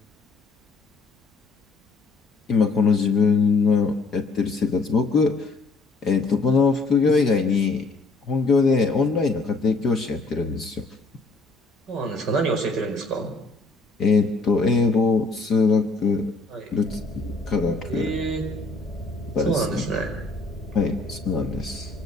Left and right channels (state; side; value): quieter; right; 3.6 dB